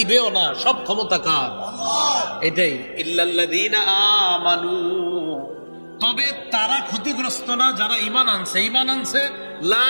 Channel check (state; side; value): inverted; both; correlation -1.00